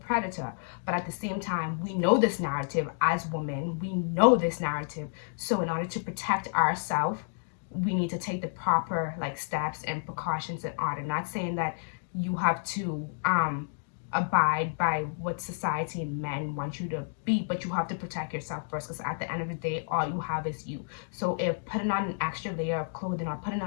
predator. But at the same time, we know this narrative as women. We know this narrative. So in order to protect ourselves, we need to take the proper like steps and precautions in order. Not saying that you have to abide by what society and men want you to be, but you have to protect yourself first, because at the end of the day, all you have is you. So if putting on an extra layer of clothing, or putting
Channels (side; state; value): right; silent; digital silence